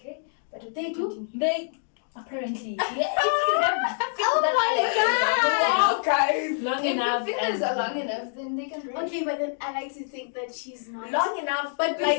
eh? But they do. They apparently. Yeah, if you have Oh my god! guys. Long if enough. the fingers are long enough, then they can break. Okay, but then I like to think that she's not Long enough, But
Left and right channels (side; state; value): right; silent; digital silence